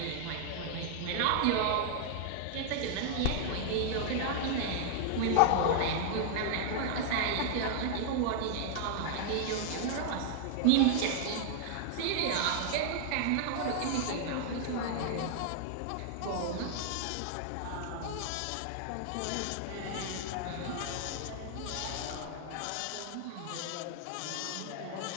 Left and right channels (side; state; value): both; different; correlation 0.00